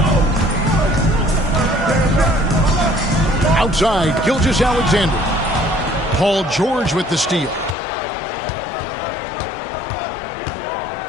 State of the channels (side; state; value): right; drops out; at 7.8 s